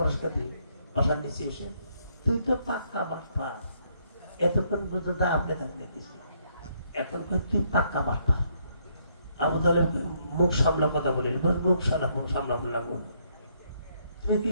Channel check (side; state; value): both; inverted; correlation -0.71